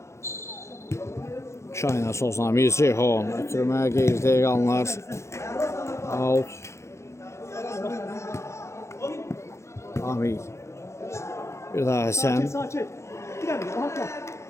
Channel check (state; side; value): late; right; 0.14 ms